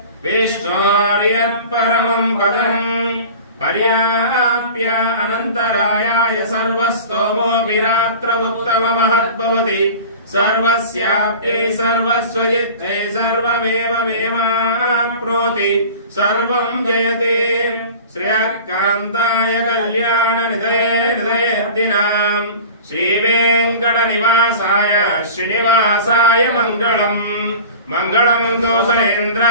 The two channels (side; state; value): both; inverted; correlation -0.39